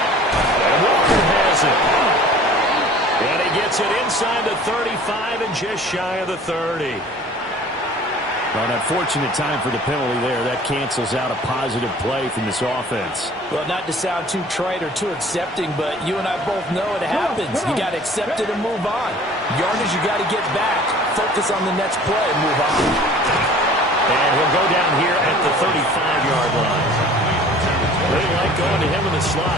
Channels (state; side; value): normal; both; correlation 0.48